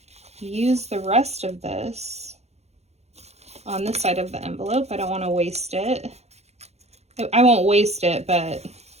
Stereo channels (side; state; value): left; late; 0.31 ms